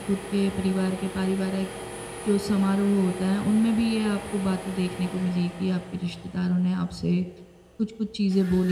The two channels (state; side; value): identical; both; correlation 1.00